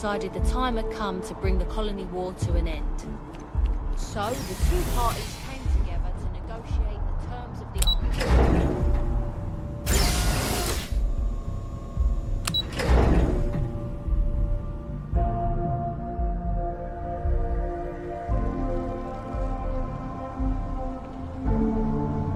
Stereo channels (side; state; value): both; identical; correlation 1.00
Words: the time had come to bring the colony war to an end. So, the two parties came together to negotiate the terms of the armistice.